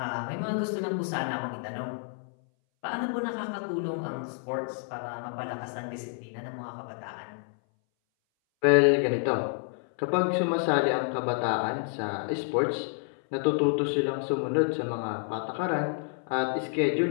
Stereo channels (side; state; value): right; silent; 58 dB below the other